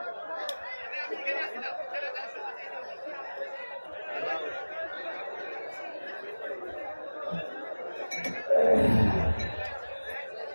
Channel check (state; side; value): inverted; both; correlation -1.00